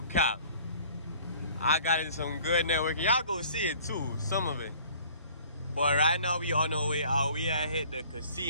I got in some good networking. Y'all go see it too, some of it. But right now we on our way out. We had hit the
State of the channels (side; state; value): both; inverted; correlation -0.52